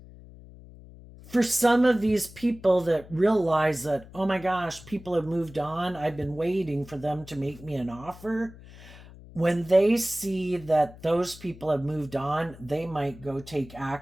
For some of these people that realize that, oh my gosh, people have moved on, I've been waiting for them to make me an offer. When they see that those people have moved on, they might go take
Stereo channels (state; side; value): noise; left; hum, 19 dB below the sound